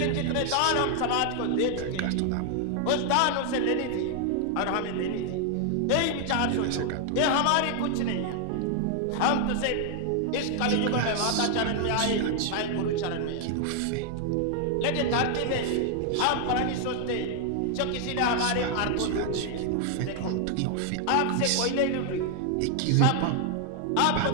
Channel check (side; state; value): both; different; correlation 0.00